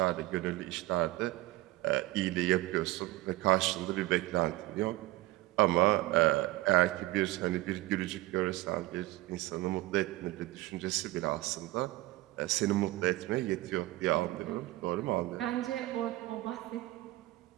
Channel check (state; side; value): quieter; left; 18.4 dB